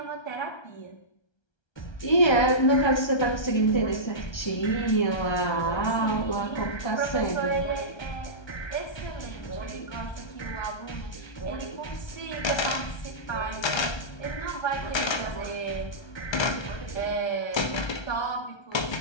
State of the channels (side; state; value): right; late; 1.3 ms